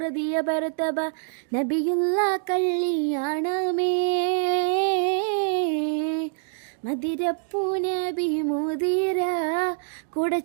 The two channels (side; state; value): left; silent; digital silence